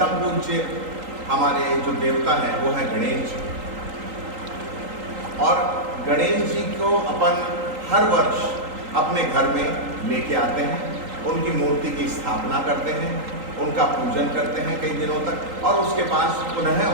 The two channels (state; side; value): late; left; 3.8 ms